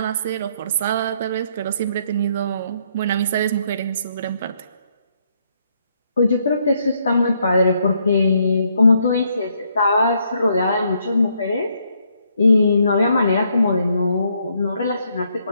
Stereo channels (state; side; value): inverted; both; correlation -0.72